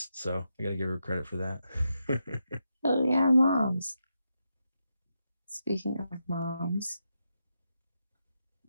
So I gotta give her credit for that. Oh yeah, moms. Speaking of moms,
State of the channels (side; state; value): both; inverted; correlation -0.85